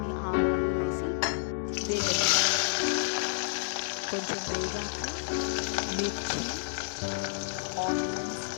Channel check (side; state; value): right; silent; digital silence